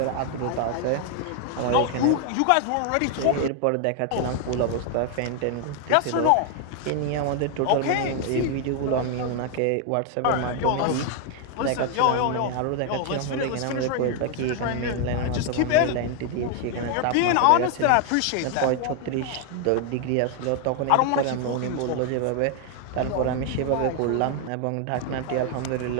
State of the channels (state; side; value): different; both; correlation 0.00